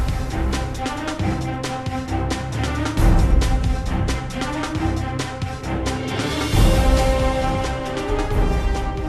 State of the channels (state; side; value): identical; both; correlation 1.00